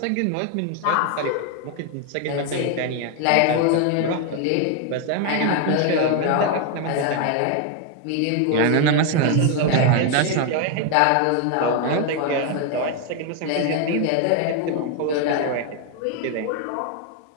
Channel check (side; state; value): both; different; correlation 0.01